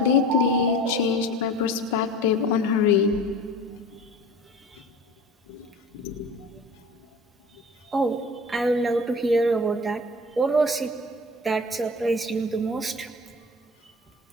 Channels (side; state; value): both; normal; correlation 0.39